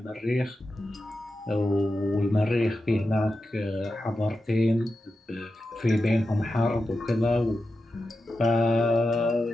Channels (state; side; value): normal; both; correlation 0.90